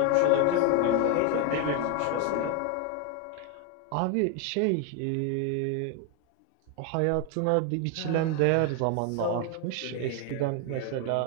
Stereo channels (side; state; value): both; different; correlation 0.01